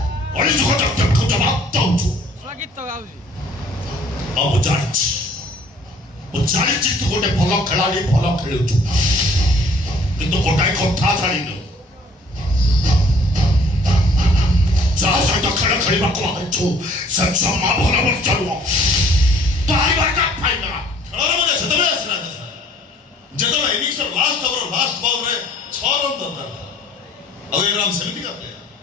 ଅଳିଯୁଗ ଜଗତକୁ ଜବାବ ଦଉଛୁ। ଆଉ ମୁଁ ଜାଣିଛି ତୁ ଗୋଟେ ଭଲ ଖେଳାଳି, ଭଲ ଖେଳୁଛୁ, କିନ୍ତୁ ଗୋଟାଏ କଥା ଜାଣିନୁ, ଯାହା ସହିତ ଖେଳ ଖେଳିବାକୁ ଆଇଛୁ ସେ ଜମା ଭଲ ମଣିଷ ନୁହଁ। ଖେଳର ମଜା ସେତେବେଳେ ଆସିଲା ଯେତେବେଳେ ଇନିଂସର ଲାଷ୍ଟ ଓଭର ଲାଷ୍ଟ ବଲରେ 6 ରନ୍ ଦରକାର ଥିଲା। ଆଉ ଏ ରାମ ସେମିତିକା ପ୍ଲେୟାର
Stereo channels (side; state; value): both; normal; correlation 0.57